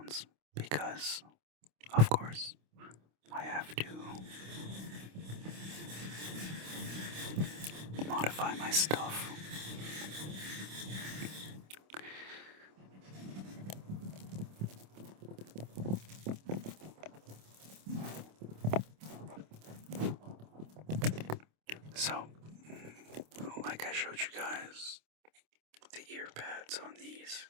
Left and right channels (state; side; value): late; left; 26 ms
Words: because of course I have to modify my stuff. So, like I showed you guys, the ear pads on these